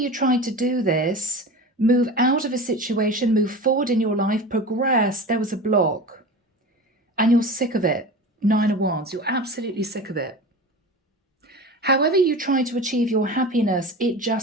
tried to do this, move out of a situation, move forward in your life, progress, there was a block. And you're sick of it. Nine of Wands, you're absolutely sick of it. However you try to achieve your happiness, it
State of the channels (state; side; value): normal; both; correlation 0.32